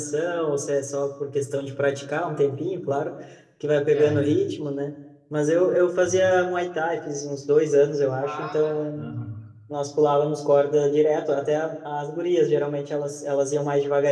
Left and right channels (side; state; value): both; identical; correlation 1.00